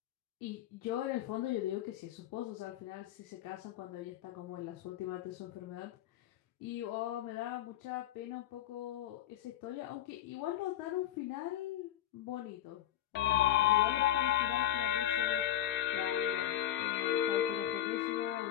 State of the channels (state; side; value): quieter; right; 12.3 dB